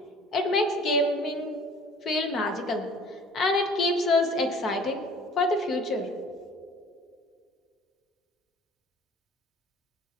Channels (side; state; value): both; normal; correlation 0.49